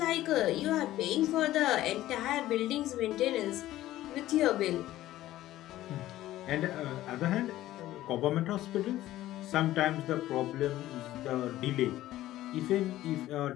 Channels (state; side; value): quieter; right; 14.8 dB